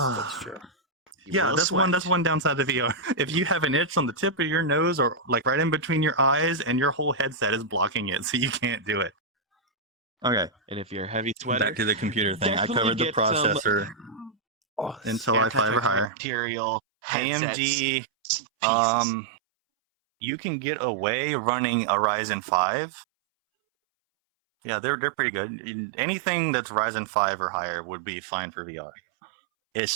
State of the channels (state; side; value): drops out; left; at 16.1 s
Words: that's true. You Yeah, will that's sweat. one downside of VR. If you have an itch on the tip of your nose or like right in between your eyes and your whole headset is blocking it, so you can't do it. Okay, And if you're a heavy sweater, back to the computer thing. I definitely covered the get some processor, Oh, Intel i5 or higher. antibacterial headsets. AMD, pieces. you can get away running a Ryzen 5. Yeah, they're pretty good. Anything that's Ryzen 5 or higher would be fine for VR.